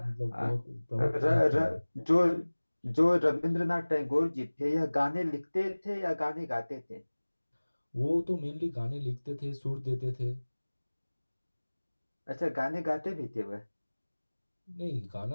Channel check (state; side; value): inverted; both; correlation -1.00